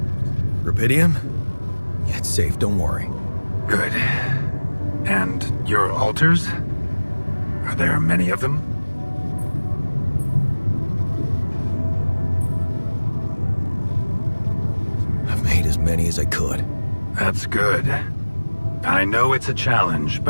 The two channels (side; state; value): both; inverted; correlation -1.00